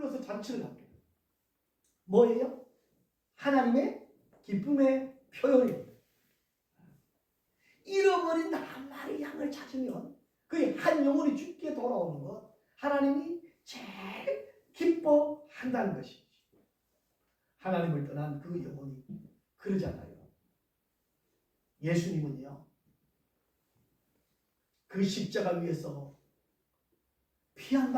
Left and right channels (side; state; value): both; identical; correlation 1.00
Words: 잔치를 합니다. 뭐예요? 하나님의 기쁨의 표현입니다. 잃어버린 한 마리 양을 찾으면 그 한 영혼이 죽게 돌아오는 것, 하나님이 제일 기뻐한다는 것이죠. 하나님을 떠난 그 영혼이 그러잖아요. 예수님은요, 그 십자가 위에서 피 한